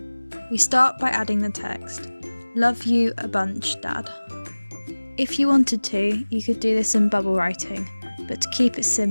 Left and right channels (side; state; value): both; inverted; correlation -1.00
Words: we start by adding the text, "Love you a bunch, Dad." If you wanted to, you could do this in bubble writing, but to keep it